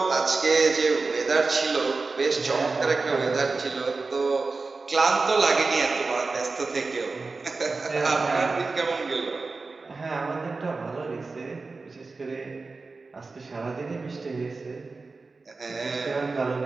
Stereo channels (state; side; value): quieter; left; 3.9 dB